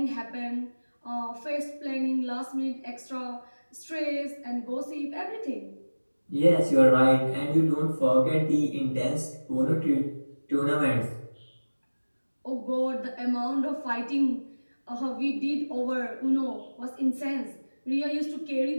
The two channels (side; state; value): both; inverted; correlation -1.00